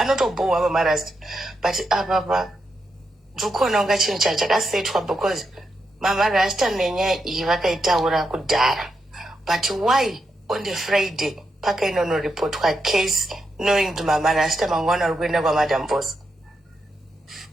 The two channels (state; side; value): normal; both; correlation 0.84